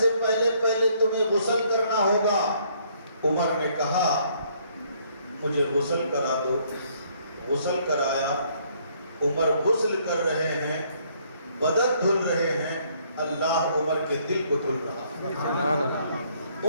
پہلے تمہیں غسل کرنا ہوگا۔ عمر نے کہا مجھے غسل کرا دو، غسل کرایا۔ عمر غسل کر رہے ہیں، بدن دھل رہے ہیں، اللہ عمر کے دل کو دھل رہا ہے،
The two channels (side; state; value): both; inverted; correlation -0.66